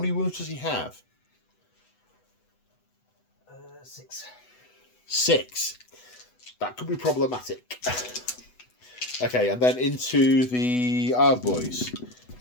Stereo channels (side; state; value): right; late; 8.1 ms